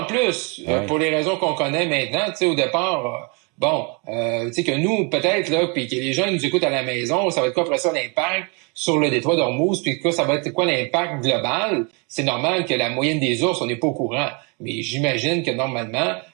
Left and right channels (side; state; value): left; quieter; 33.0 dB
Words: en plus, pour les raisons qu'on connaît maintenant, tu sais, au départ, tu sais que nous, peut-être, là, puis que les gens nous écoutent à la maison, ça va être quoi après ça l'impact sur le détroit d'Ormuz, puis ça va être quoi l'impact global? C'est normal que la moyenne des ours, on n'est pas au courant. Mais j'imagine que normalement,